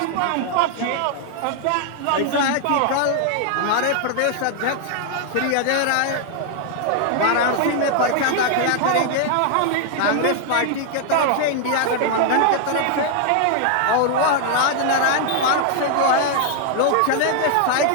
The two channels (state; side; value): different; both; correlation 0.00